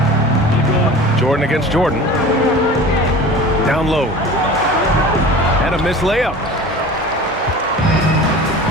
Jordan against Jordan. Down low. And a missed layup.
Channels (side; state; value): both; normal; correlation 0.38